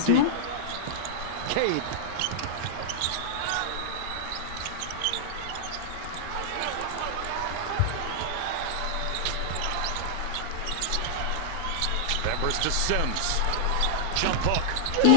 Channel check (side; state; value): both; different; correlation -0.01